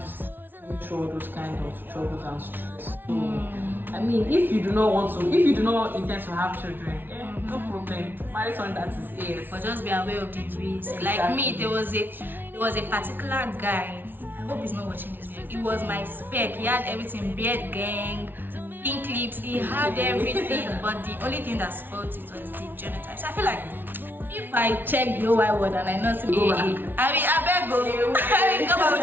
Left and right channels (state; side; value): late; left; 0.096 ms